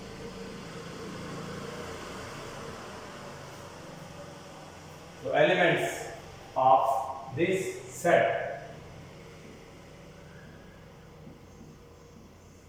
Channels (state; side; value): identical; both; correlation 1.00